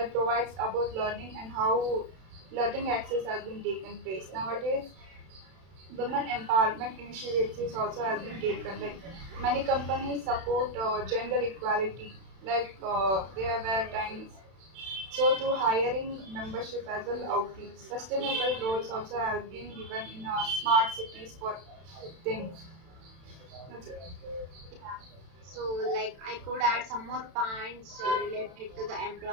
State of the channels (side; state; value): left; late; 31 ms